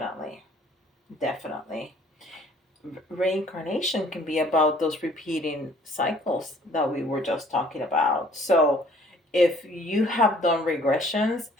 Definitely. Reincarnation can be about those repeating cycles that we were just talking about. So if you have done regressions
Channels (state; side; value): normal; both; correlation 0.57